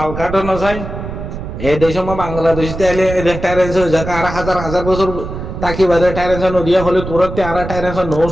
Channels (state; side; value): noise; right; rumble, 8 dB below the sound